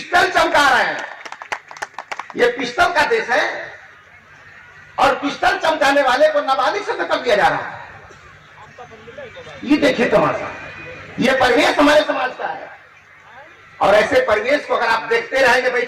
चमका रहे हैं। ये पिस्टल का देश है, और पिस्टल चमकाने वाले को नाबालिग से कर दिया जा रहा है। ये देखिए तमाशा। ये परिवेश हमारे समाज का है, और ऐसे परिवेश को अगर आप देखते रहेंगे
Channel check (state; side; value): identical; both; correlation 1.00